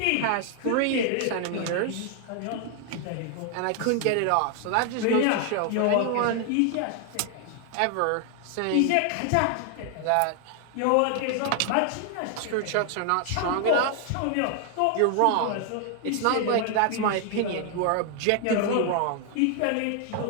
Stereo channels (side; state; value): both; different; correlation 0.00